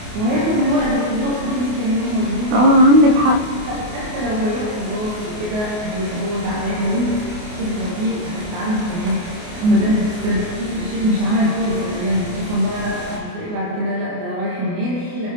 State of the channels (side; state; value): left; late; 28 ms